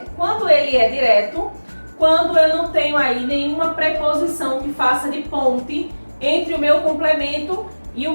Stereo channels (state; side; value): inverted; both; correlation -1.00